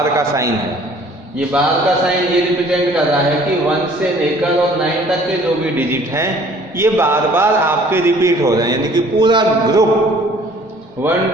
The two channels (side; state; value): both; normal; correlation 0.54